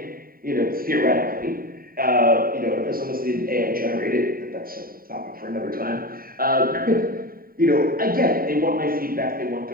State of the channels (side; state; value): left; late; 0.43 ms